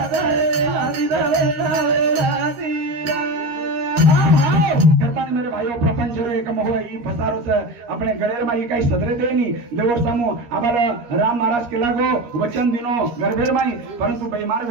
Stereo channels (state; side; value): late; left; 13 ms